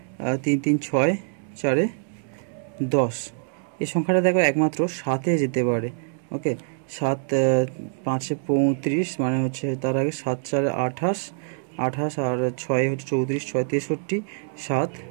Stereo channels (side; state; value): left; silent; 61 dB below the other